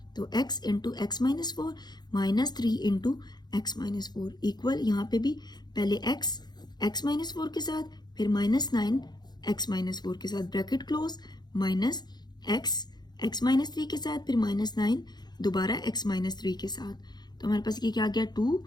तो x into x minus 4 minus 3 into x minus 4 equal, यहाँ पे भी पहले x माइनस 4 के साथ, फिर माइनस 9 x माइनस 4 के साथ, bracket close, minus x minus 3 के साथ, फिर माइनस 9 दोबारा x माइनस 3 के साथ। तो हमारे पास ये क्या आ गया,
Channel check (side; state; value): right; late; 0.20 ms